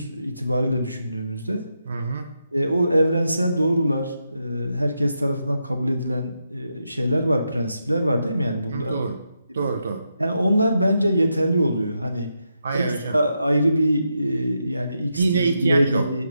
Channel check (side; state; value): both; inverted; correlation -0.84